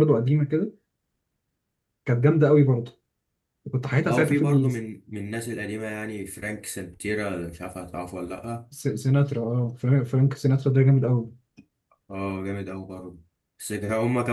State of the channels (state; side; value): identical; both; correlation 1.00